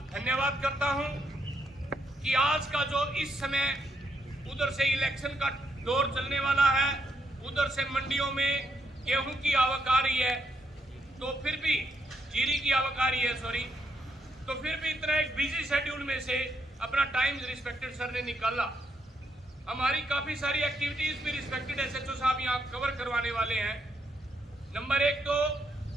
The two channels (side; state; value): both; normal; correlation 0.77